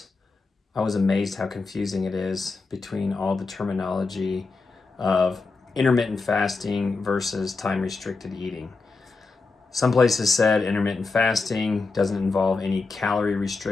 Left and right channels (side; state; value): right; quieter; 4.0 dB